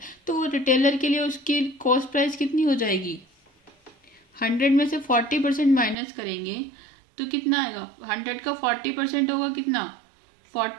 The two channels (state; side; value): drops out; left; at 6.0 s